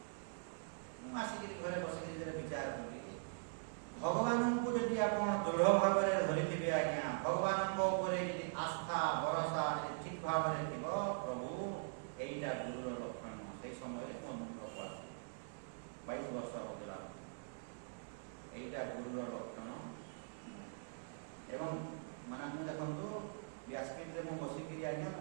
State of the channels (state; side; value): silent; left; digital silence